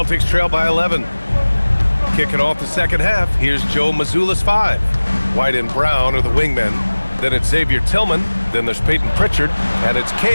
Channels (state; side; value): inverted; both; correlation -1.00